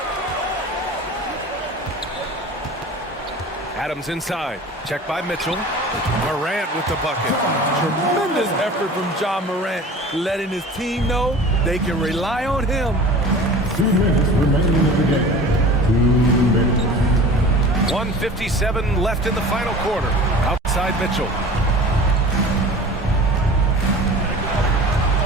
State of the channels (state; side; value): normal; both; correlation 0.40